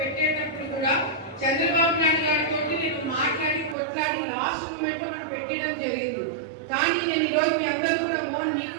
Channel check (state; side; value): drops out; left; at 3.8 s